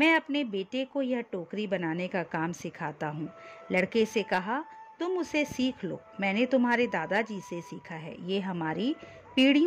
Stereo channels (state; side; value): identical; both; correlation 1.00